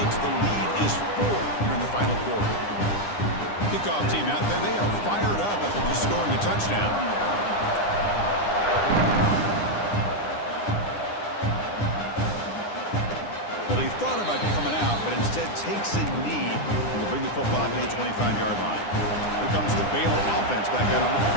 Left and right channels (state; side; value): late; right; 9.9 ms